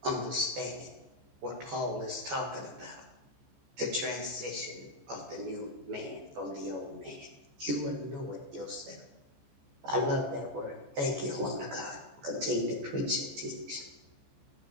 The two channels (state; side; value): late; left; 14 ms